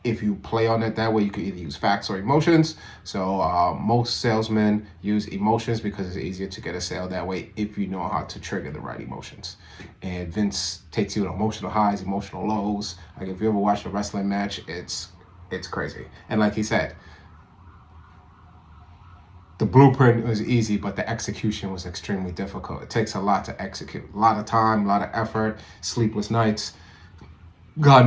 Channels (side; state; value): both; identical; correlation 1.00